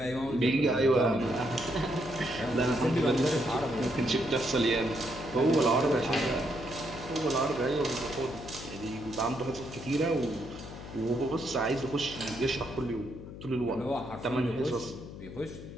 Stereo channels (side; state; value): left; noise; hum, 12 dB below the sound